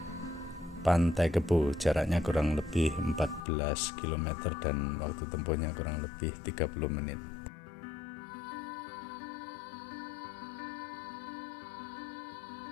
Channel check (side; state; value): right; drops out; at 3.4 s